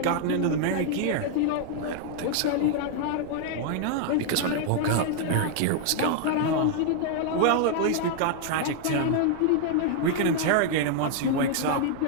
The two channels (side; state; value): both; different; correlation 0.00